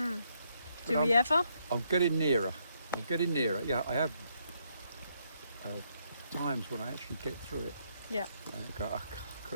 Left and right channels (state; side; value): inverted; both; correlation -0.75